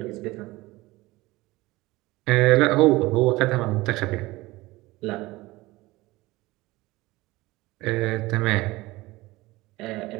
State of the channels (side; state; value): left; quieter; 20.2 dB